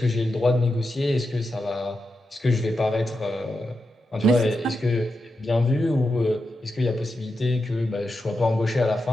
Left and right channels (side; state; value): both; normal; correlation 0.88